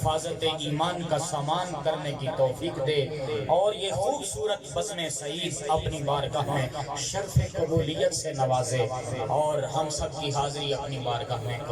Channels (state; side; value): identical; both; correlation 1.00